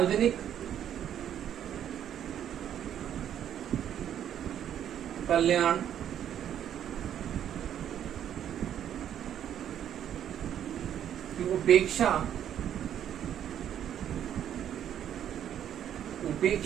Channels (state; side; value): quieter; left; 10.0 dB